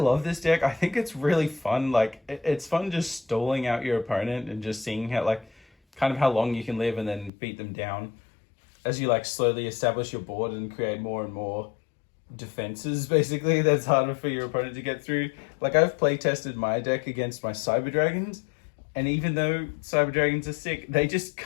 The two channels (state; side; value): drops out; right; at 7.3 s